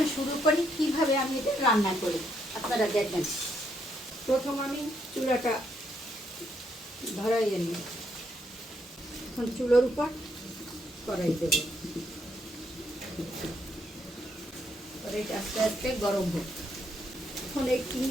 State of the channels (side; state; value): both; normal; correlation 0.74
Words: শুরু করি কিভাবে আমি এটা রান্না করি, আপনারা দেখবেন। প্রথম আমি চুলাটা ধরাইয়ে নিই। এখন চুলোর উপর কড়াই দেব, কড়াইটা আস্তে আস্তে গরম হোক। এখন এই